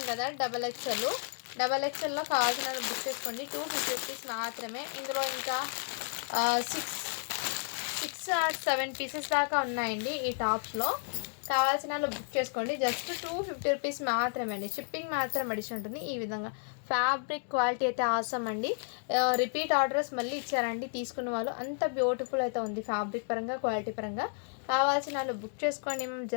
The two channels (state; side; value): silent; right; 56 dB below the other